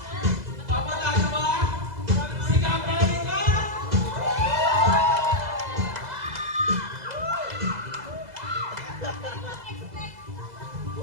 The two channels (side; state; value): left; late; 2.0 ms